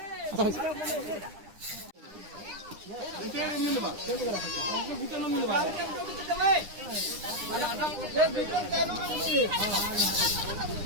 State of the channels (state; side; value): late; left; 9.8 ms